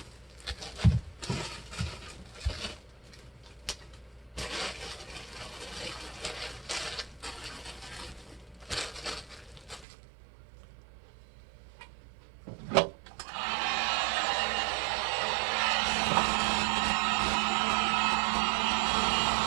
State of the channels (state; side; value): drops out; left; at 9.9 s